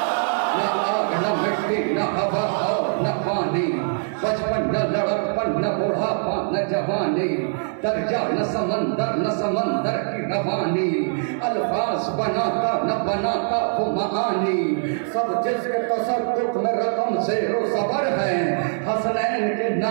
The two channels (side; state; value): left; silent; digital silence